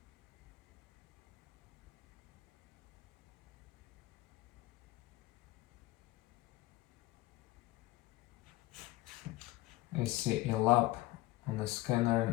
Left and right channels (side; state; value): right; quieter; 18.2 dB